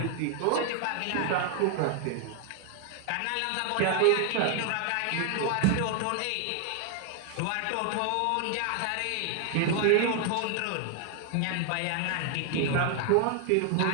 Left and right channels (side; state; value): both; different; correlation 0.00